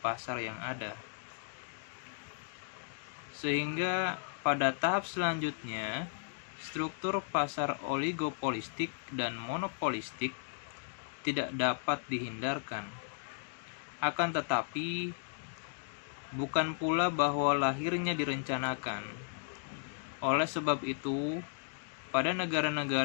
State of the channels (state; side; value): silent; right; digital silence